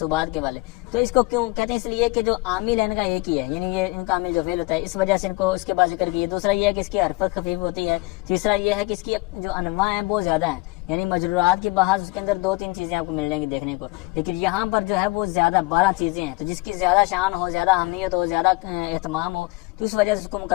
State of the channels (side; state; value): right; quieter; 24.3 dB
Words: کے والے۔ تو اس کو کیوں کہتے ہیں؟ اس لیے کہ جو عامل ہے ان کا ایک ہی ہے، یعنی یہ ان کا عامل جو فعل ہوتا ہے، اس وجہ سے ان کو اس کے بعد ذکر کیا۔ دوسرا یہ ہے کہ اس کی حرکت خفیف ہوتی ہے۔ تیسرا یہ ہے کہ اس کی جو انواع ہیں وہ زیادہ ہیں، یعنی مجرورات کی بحث اس کے اندر 2-3 چیزیں آپ کو مل جائیں گی دیکھنے کو، لیکن یہاں پر جو ہے وہ زیادہ 12 چیزیں ہیں۔ تو جس کی زیادہ شان ہو، زیادہ اہمیت ہو، زیادہ اہتمام ہو، تو اس وجہ سے اس کو